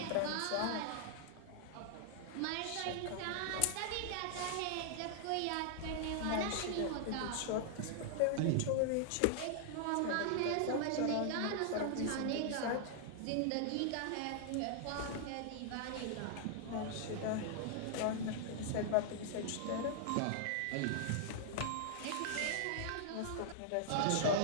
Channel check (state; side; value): different; both; correlation 0.00